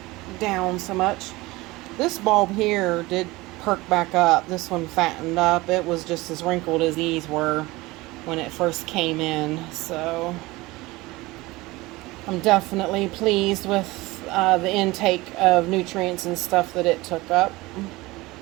down so much, this bulb here did perk back up. This one fattened up. It was just as wrinkled as these were when it first came in. So I'm definitely pleased with the intake of nutrients and stuff that it took up.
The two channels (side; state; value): left; quieter; 20.9 dB